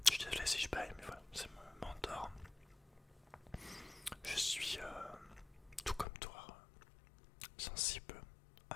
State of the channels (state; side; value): drops out; right; at 6.1 s